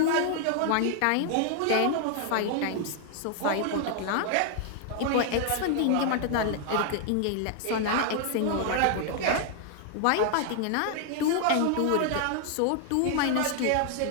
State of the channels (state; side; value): different; both; correlation 0.00